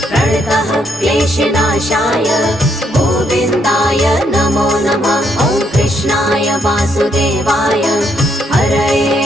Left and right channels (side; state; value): both; normal; correlation 0.74